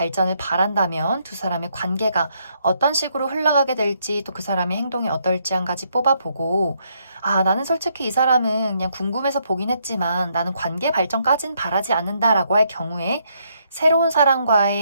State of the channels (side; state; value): both; inverted; correlation -0.74